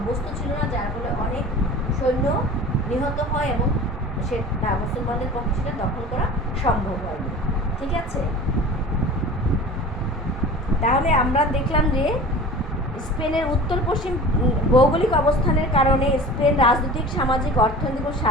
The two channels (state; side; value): normal; both; correlation 0.39